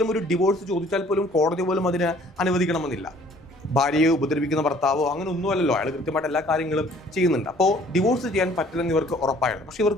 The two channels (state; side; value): normal; both; correlation 0.56